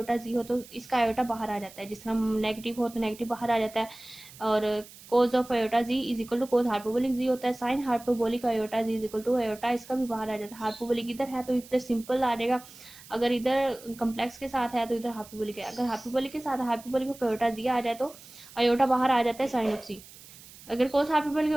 जी हो तो इसका आयोटा बाहर आ जाता है। जिस तरह नेगेटिव हो तो नेगेटिव बाहर आ जाता है, और cos of iota z is equal to cos hyperbolic z होता है। Sine hyperbolic iota z is equal to iota, इसका भी बाहर आ जाता है। हाइपरबोलिक इधर है तो इधर सिंपल आ जाएगा, अगर इधर कम्प्लेक्स के साथ है तो इधर हाइपरबोलिक है। अगर हाइपरबोलिक के साथ हाइपरबोलिक ऑफ आयोटा जी आ जाए तो आयोटा बाहर आ जाता है साइन ऑफ सी। अगर कोस हाइपरबोलिक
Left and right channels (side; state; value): right; noise; hiss, 20 dB below the sound